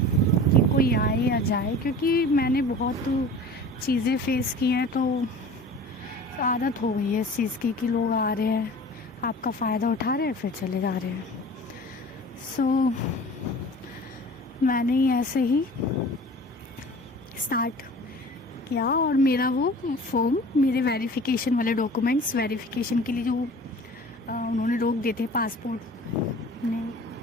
कोई आए या जाए, क्योंकि मैंने बहुत चीज़ें फेस की हैं। तो आदत हो गई है इस चीज़ की कि लोग आ रहे हैं, आपका फ़ायदा उठा रहे हैं, फिर चले जा रहे हैं। सो मैंने ही ऐसे ही स्टार्ट किया और मेरा वो फॉर्म, मेरे वेरिफिकेशन वाले डॉक्यूमेंट्स वेरिफिकेशन के लिए जो उन्होंने रोक दिए थे पासपोर्ट ने,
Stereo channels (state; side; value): normal; both; correlation 0.41